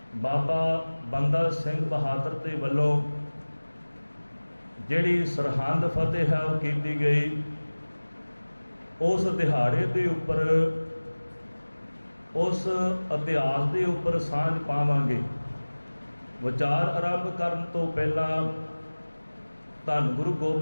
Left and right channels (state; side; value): inverted; both; correlation -1.00